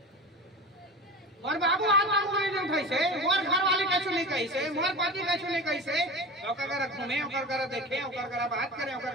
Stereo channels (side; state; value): both; normal; correlation 0.31